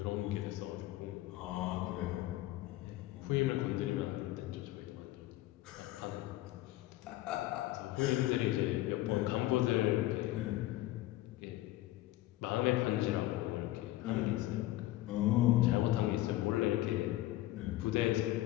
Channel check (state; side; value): quieter; right; 16.4 dB